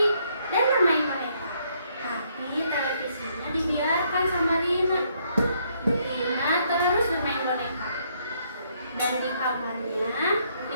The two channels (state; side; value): inverted; both; correlation -0.71